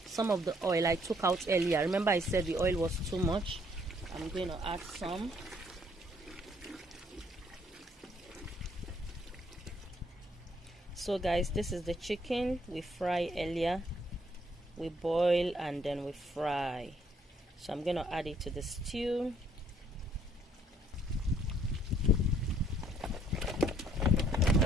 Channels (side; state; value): both; normal; correlation 0.66